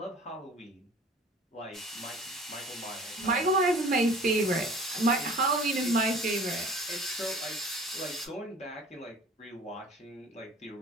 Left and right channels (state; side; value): normal; both; correlation 0.47